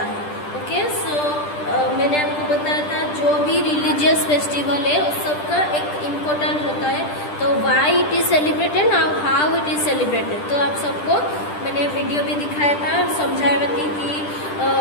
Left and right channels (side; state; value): right; late; 10 ms